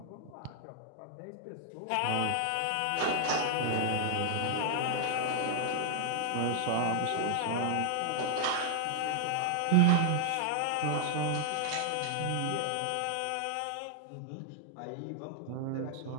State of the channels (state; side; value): different; both; correlation 0.00